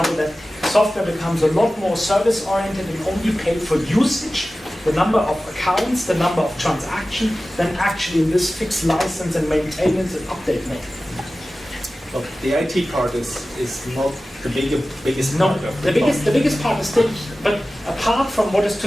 that software becomes a lot more service-oriented and only paid for usage, the number of accounts, the number of transactions, than actually in this fixed license and maintenance and update mode. Well, the IT part is not the biggest part of the biggest part is still, but apart from what is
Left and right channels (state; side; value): normal; both; correlation 0.96